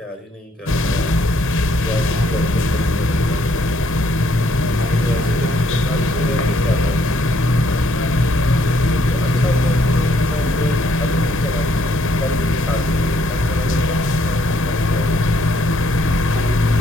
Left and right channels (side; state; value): both; normal; correlation 0.69